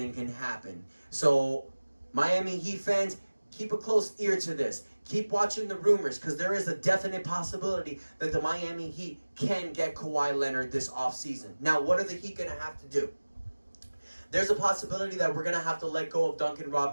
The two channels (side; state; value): both; inverted; correlation -1.00